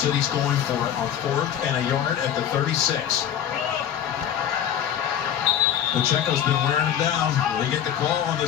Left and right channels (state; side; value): quieter; right; 9.8 dB